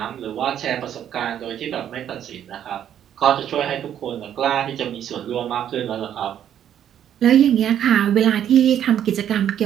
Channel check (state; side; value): quieter; left; 10.1 dB